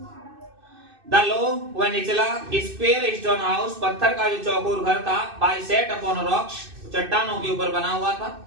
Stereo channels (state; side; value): late; left; 2.6 ms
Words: द लो वह निचला स्क्वायर स्टोन हाउस, पत्थर का जो चौकोर घर था, बाय सेट अपॉन रॉक्स, चट्टानों के ऊपर बना हुआ था।